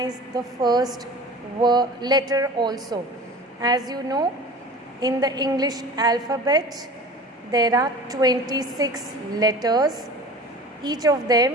the first letter also. As you know, in the English alphabet, there are 26 letters. Each of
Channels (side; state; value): both; normal; correlation 0.39